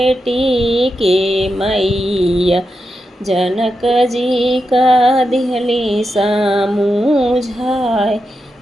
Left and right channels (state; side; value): normal; both; correlation 0.87